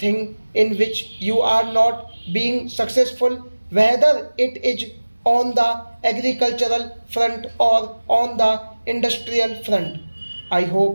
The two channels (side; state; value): both; inverted; correlation -1.00